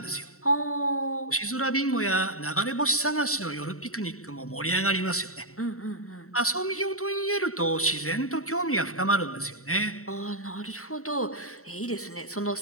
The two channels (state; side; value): late; right; 0.64 ms